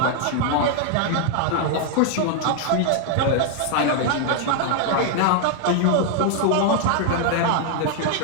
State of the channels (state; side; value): different; both; correlation 0.00